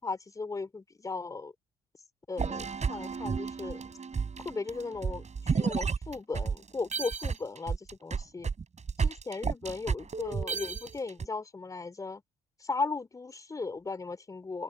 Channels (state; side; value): normal; both; correlation 0.71